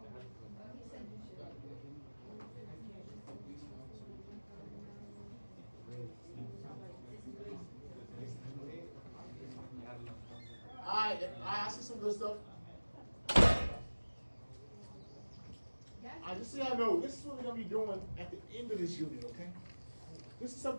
I see some good stuff. I just so y'all know, this is what we're gonna be doing at the end of this unit, okay? This is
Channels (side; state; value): both; inverted; correlation -1.00